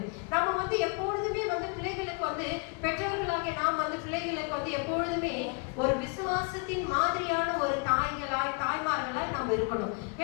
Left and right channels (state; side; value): quieter; right; 35.8 dB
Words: நம்ம வந்து எப்பொழுதுமே வந்து பிள்ளைகளுக்கு வந்து பெற்றவர்களாகிய நாம் வந்து பிள்ளைகளுக்கு வந்து எப்பொழுதுமே ஒரு விசுவாசத்தின் மாதிரியான ஒரு தாய்மார்களாய் நம்ம இருக்கணும்.